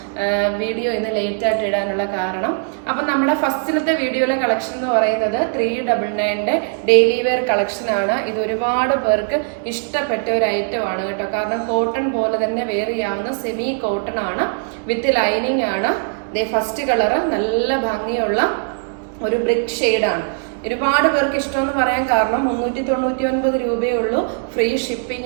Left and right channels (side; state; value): left; silent; 60 dB below the other